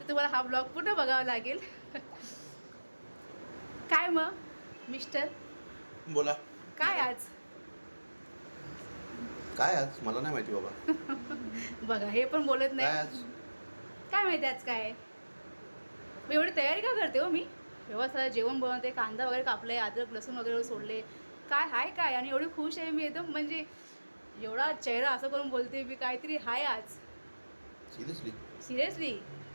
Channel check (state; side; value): inverted; both; correlation -1.00